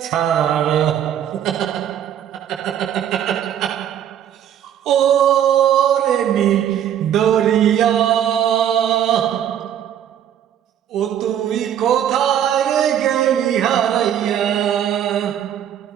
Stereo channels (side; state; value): left; quieter; 10.1 dB